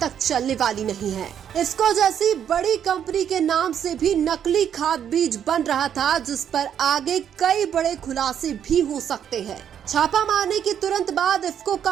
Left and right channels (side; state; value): left; quieter; 9.0 dB